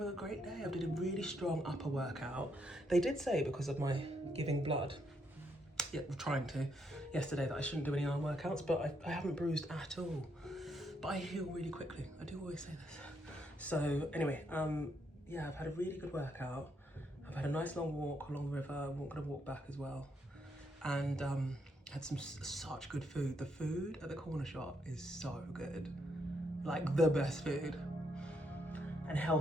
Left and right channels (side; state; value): both; normal; correlation 0.76